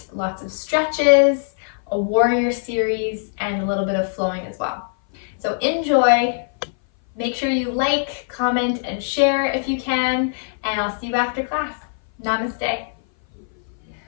lots of stretches, a warrior series, and a little bit of flowing as well. So enjoy, make sure you like, comment, and share if you can, and I'll see you after class. Namaste.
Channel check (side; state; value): right; silent; 59 dB below the other